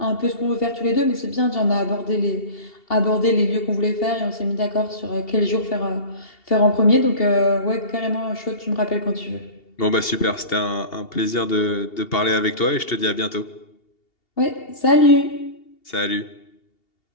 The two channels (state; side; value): late; right; 2.8 ms